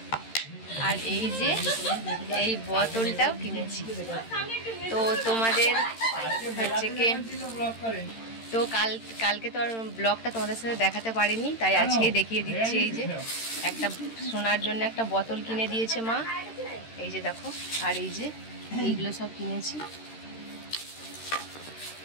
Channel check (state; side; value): late; right; 13 ms